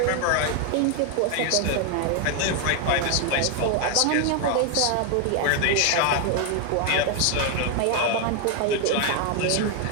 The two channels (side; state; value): both; different; correlation 0.01